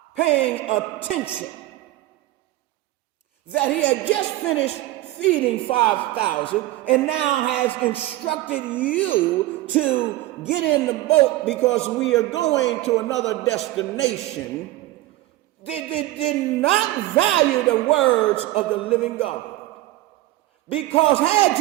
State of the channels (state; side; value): quieter; left; 16.9 dB